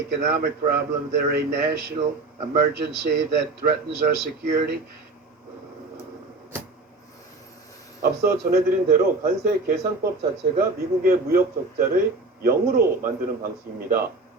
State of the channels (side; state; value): left; quieter; 3.4 dB